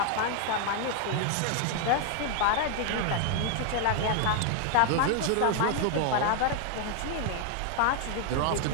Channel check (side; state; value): both; different; correlation 0.00